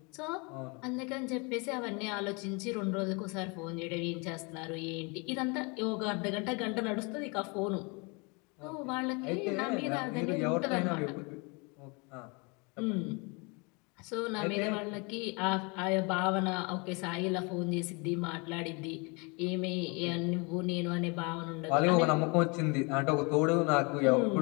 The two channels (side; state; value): right; quieter; 30.3 dB